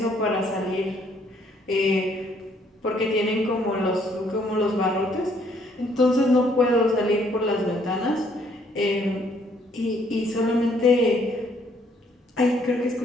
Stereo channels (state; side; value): normal; both; correlation 0.66